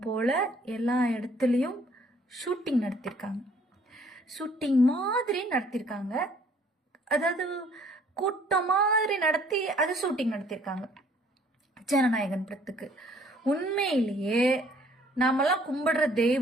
போல எல்லா இடத்துலயும் ஷூட்டிங் நடத்திருக்காங்க, ஷூட்டிங் மாதிரி நடத்திருக்காங்க, அதாவது கூட்டம் மாதிரி நடத்தி அது ஷூட்டிங் நடத்திருக்காங்க ஜனநாயகன் படத்துக்கு. உண்மையிலேயே நாமெல்லாம் கும்பிடுற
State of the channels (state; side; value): normal; both; correlation 0.60